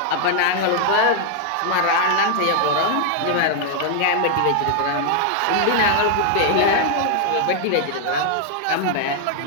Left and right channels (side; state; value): both; different; correlation 0.00